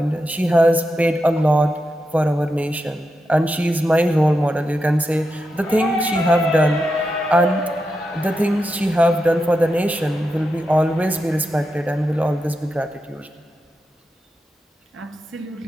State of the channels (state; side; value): normal; both; correlation 0.87